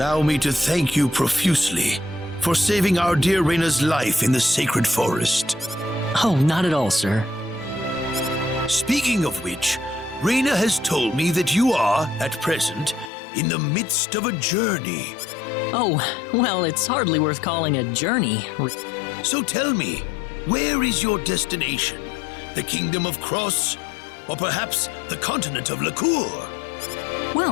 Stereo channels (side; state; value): right; drops out; at 13.1 s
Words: me to thank you profusely for saving our dear Raina's life in the sacred forest. Oh, not at all, sir. Speaking of which, Raina has told me that you are, at present, in the midst of a journey. Oh, well, it's hardly worth calling a journey. So tell me, where is your destination? The Kingdom of Cross? Or perhaps the continent of Lacour?